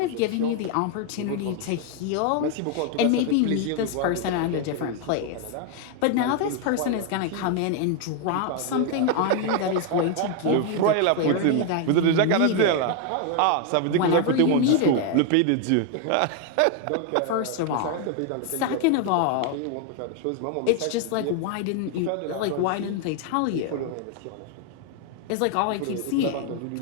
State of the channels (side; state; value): both; different; correlation 0.01